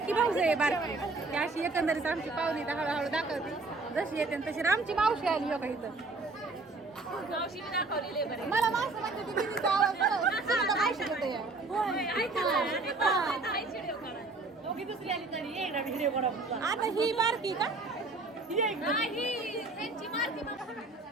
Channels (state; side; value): quieter; left; 3.4 dB